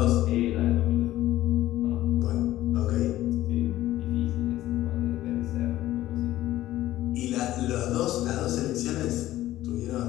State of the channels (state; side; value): quieter; right; 14.8 dB